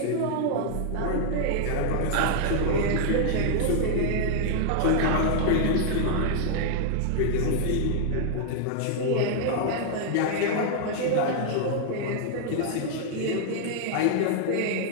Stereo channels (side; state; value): both; different; correlation 0.00